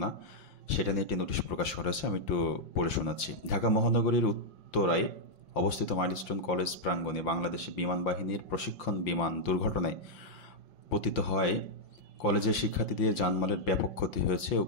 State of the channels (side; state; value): right; late; 5.8 ms